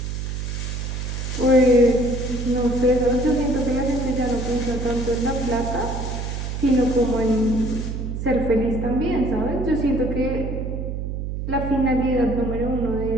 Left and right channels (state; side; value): noise; right; hum, 4 dB below the sound